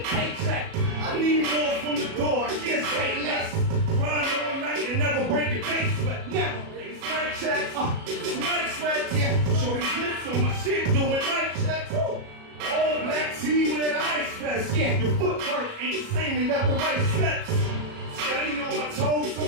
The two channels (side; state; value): left; late; 37 ms